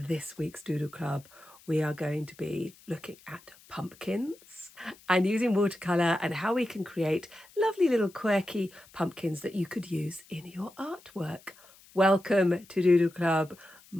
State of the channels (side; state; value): left; noise; hiss, 25 dB below the sound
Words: this week's Doodle Club, we are going to be looking at pumpkins and using watercolour and how we can create lovely little quirky pumpkins that you could use in your artwork. Welcome to Doodle Club.